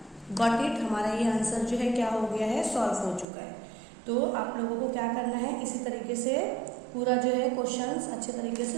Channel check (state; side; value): drops out; left; at 3.2 s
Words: गॉट इट, हमारा ये आंसर जो है क्या हो गया है, सॉल्व हो चुका है। तो आप लोगों को क्या करना है, इसी तरीके से पूरा जो है क्वेश्चंस अच्छे तरीके से